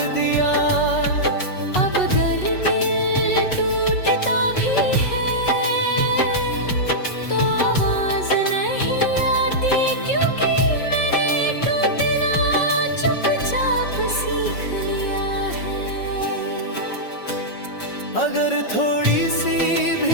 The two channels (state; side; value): late; right; 5.5 ms